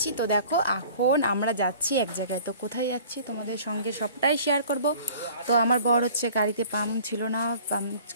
তো দেখো, এখন আমরা যাচ্ছি এক জায়গায়। তো কোথায় যাচ্ছি তোমাদের সঙ্গে সবটাই শেয়ার করব। তো আমার বর হচ্ছে গাড়িতে পাম্প ছিল না, পাম্প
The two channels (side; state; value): both; inverted; correlation -0.48